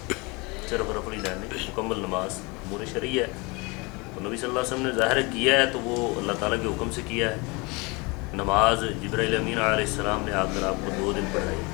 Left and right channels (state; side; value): quieter; right; 27.3 dB